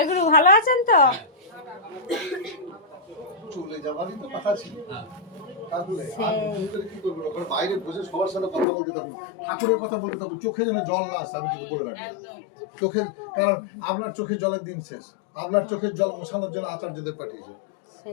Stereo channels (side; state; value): right; drops out; at 8.7 s